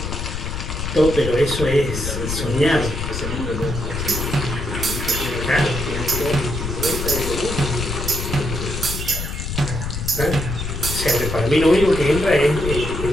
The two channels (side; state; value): left; noise; rumble, 4 dB below the sound